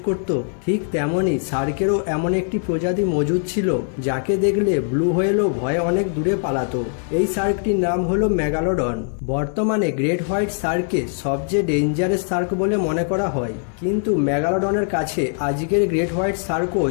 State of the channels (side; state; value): right; silent; 60 dB below the other